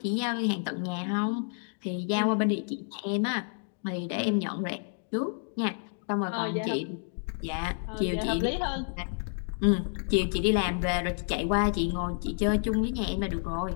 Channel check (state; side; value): silent; right; 58 dB below the other